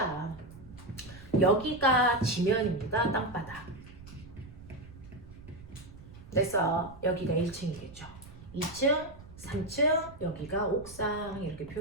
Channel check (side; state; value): right; noise; rumble, 18 dB below the sound